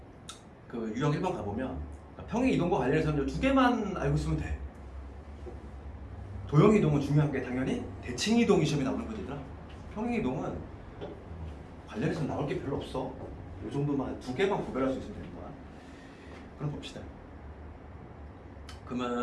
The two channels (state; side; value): identical; both; correlation 1.00